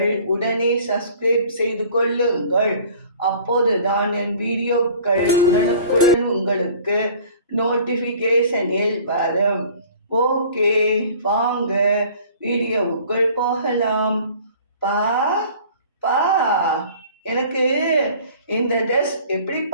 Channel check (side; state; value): both; inverted; correlation -0.48